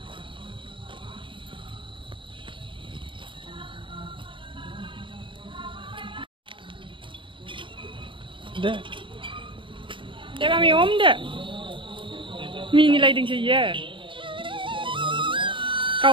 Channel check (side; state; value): left; late; 0.24 ms